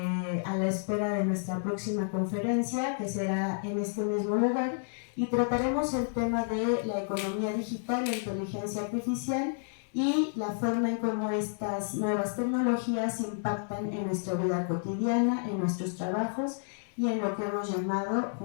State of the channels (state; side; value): silent; right; digital silence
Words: a la espera de nuestra próxima conferencia que será en este mismo lugar y trataremos el tema de la economía digital, la inteligencia artificial y la forma en cómo estas nuevas tecnologías impactan en nuestra vida cotidiana, en nuestros trabajos y en lo que hemos llamado,